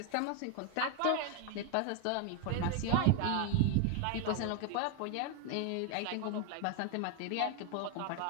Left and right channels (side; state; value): both; different; correlation 0.01